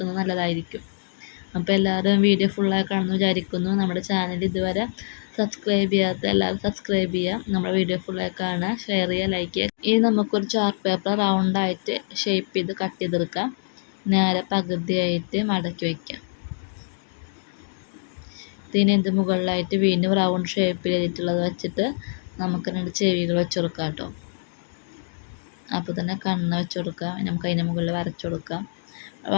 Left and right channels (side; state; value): right; silent; digital silence